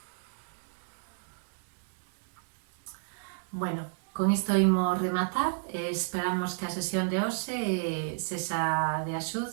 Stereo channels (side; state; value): left; silent; digital silence